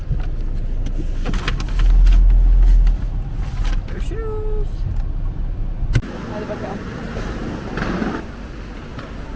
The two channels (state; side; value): identical; both; correlation 1.00